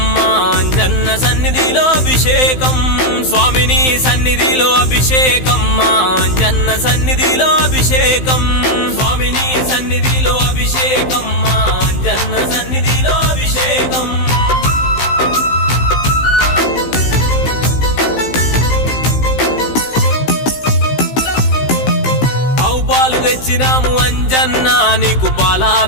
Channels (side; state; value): right; late; 15 ms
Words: అంజన్న సన్నిధిలో అభిషేకం స్వామిని సన్నిధిలో అభిషేకం అంజన్న సన్నిధిలో అభిషేకం స్వామిని సన్నిధిలో అభిషేకం అంజన్న సన్నిధిలో అభిషేకం పాలు తెచ్చినాము అంజన్న నీకు